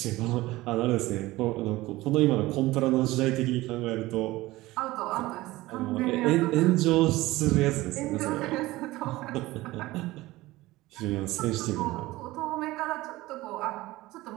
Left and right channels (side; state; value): left; quieter; 18.5 dB